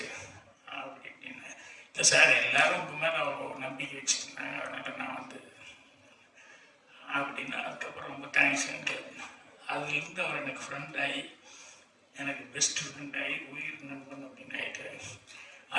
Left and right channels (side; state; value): both; identical; correlation 1.00